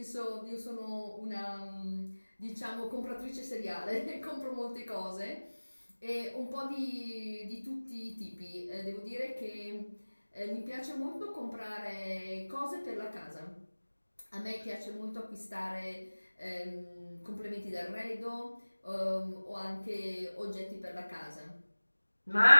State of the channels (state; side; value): inverted; both; correlation -1.00